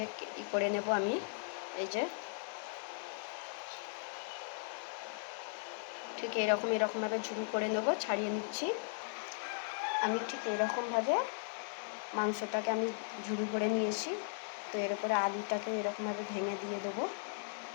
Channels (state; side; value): silent; right; digital silence